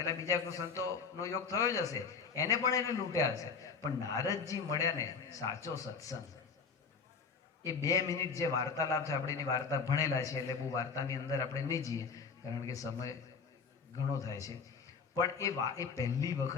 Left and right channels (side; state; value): right; quieter; 5.5 dB